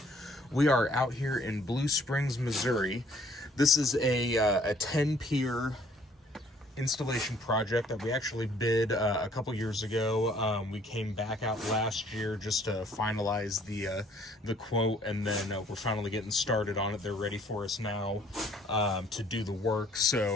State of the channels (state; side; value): normal; both; correlation 0.60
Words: We are out here in Blue Springs, Missouri. This is a 10-pier installation project that we actually bid a couple years ago. We came back out last year just to finalize the quote, and then we're finally getting started on it. They're ready for us now to do the work.